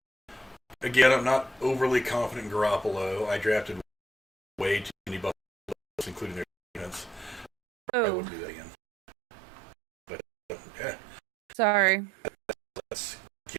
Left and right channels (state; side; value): drops out; left; at 7.5 s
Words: again, I'm not overly confident in Garoppolo. I drafted way too many Buffalo, including their defense. I wouldn't do that again. But, yeah. Sorry. Let's